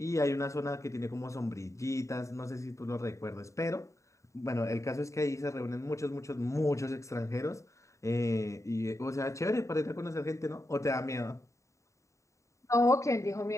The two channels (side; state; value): right; late; 0.15 ms